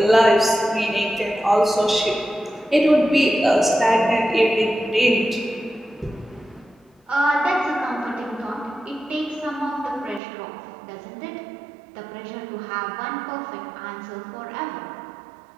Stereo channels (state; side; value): drops out; left; at 10.2 s